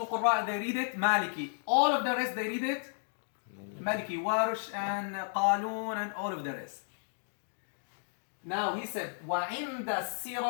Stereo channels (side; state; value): right; silent; digital silence